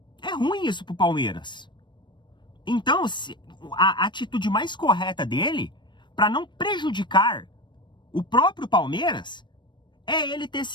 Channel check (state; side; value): late; right; 0.22 ms